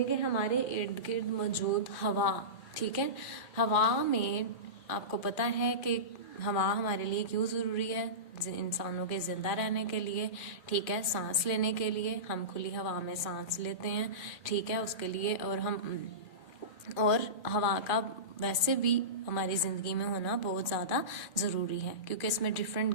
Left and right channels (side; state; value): right; late; 2.4 ms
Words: कि हमारे इर्द गिर्द मौजूद हवा. ठीक है, हवा में आपको पता है कि हवा हमारे लिए क्यों ज़रूरी है, इंसानों के ज़िंदा रहने के लिए. ठीक है, सांस लेने के लिए हम खुली हवा में सांस लेते हैं. ठीक है, उसके लिए और हवा का वैसे भी हमारी ज़िंदगी में होना बहुत ज़्यादा ज़रूरी है, क्योंकि इसमें डिफरेंट